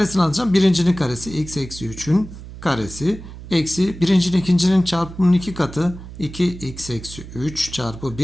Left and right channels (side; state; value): right; noise; hum, 14 dB below the sound